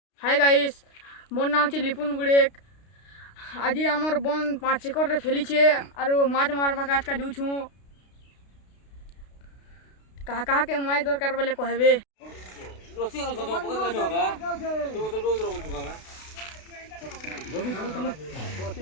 Hi guys मोर नाम है लिपुन बुड़ेक। आज आमर बन 5 एकड़ फैलीछे और माछ मारवा आज का जूँ कहा कहा के माछ दरकार बोले कहबे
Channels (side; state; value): right; late; 32 ms